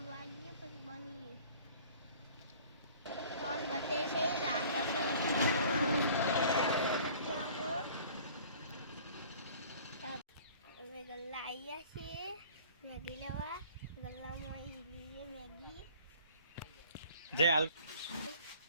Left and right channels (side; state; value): both; inverted; correlation -0.49